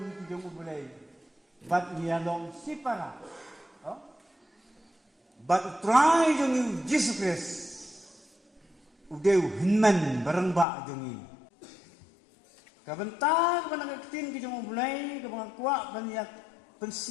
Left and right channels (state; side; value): drops out; right; at 10.7 s